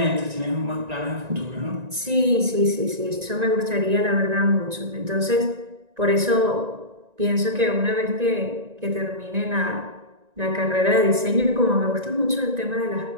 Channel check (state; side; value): late; left; 1.9 ms